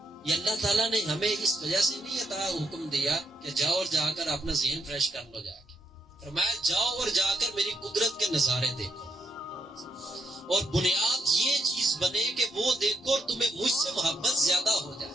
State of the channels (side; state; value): both; normal; correlation 0.77